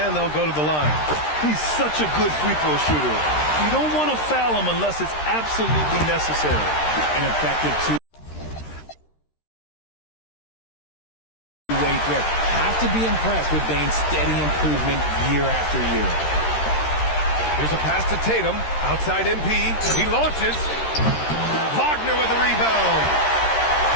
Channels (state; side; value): late; right; 13 ms